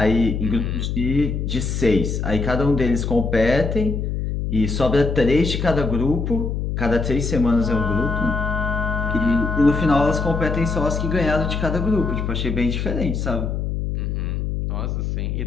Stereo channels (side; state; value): left; noise; hum, 2 dB below the sound